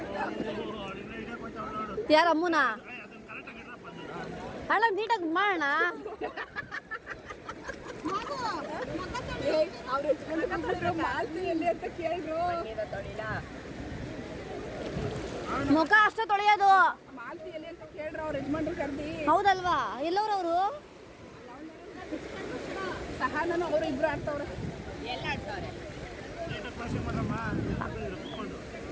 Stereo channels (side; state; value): both; identical; correlation 1.00